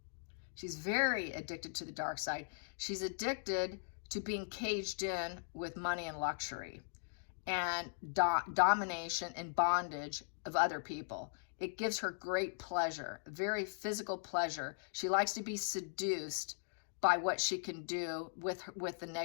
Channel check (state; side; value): silent; right; digital silence